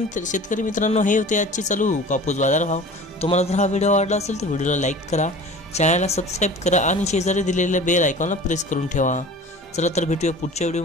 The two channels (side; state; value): both; normal; correlation 0.41